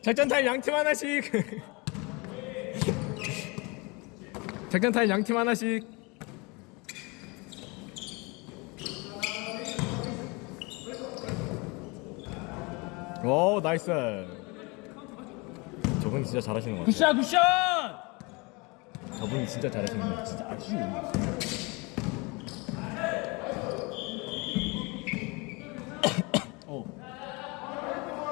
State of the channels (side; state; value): right; quieter; 27.5 dB